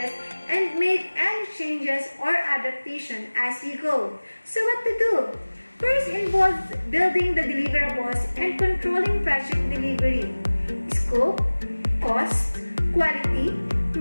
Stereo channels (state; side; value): inverted; both; correlation -1.00